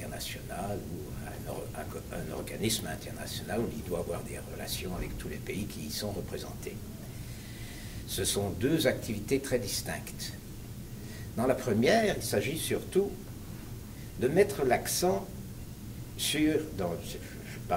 ou à un organisme international où il doit avoir des relations avec tous les pays qui y sont représentés. Ce sont deux activités très distinctes. Dans la première, il s'agit surtout de mettre l'accent je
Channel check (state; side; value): identical; both; correlation 1.00